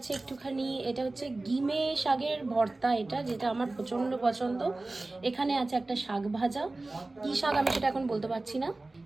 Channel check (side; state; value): left; quieter; 3.1 dB